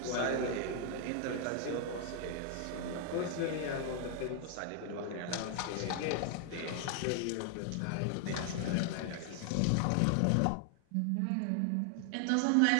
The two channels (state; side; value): different; both; correlation 0.00